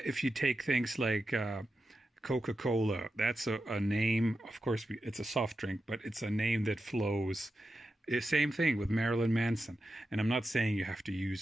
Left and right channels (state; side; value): normal; both; correlation 0.90